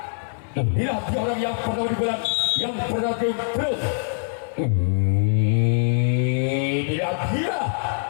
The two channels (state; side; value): silent; right; 56 dB below the other